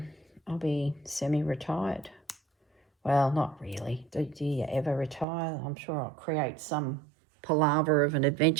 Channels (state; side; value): drops out; left; at 5.2 s